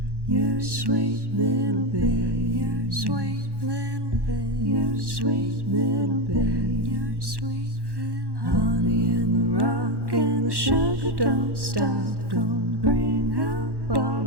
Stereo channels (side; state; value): left; late; 1.1 ms